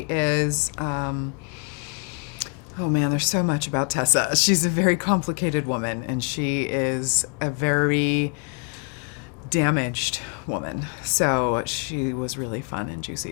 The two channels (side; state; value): right; quieter; 38.8 dB